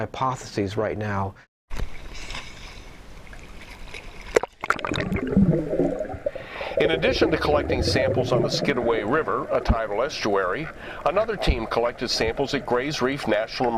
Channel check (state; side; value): identical; both; correlation 1.00